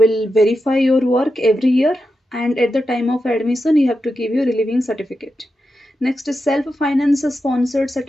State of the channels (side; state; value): both; normal; correlation 0.88